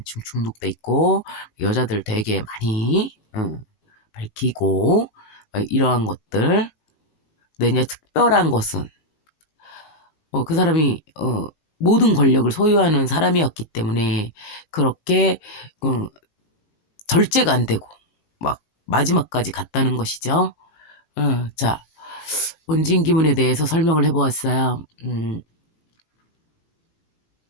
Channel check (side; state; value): right; late; 18 ms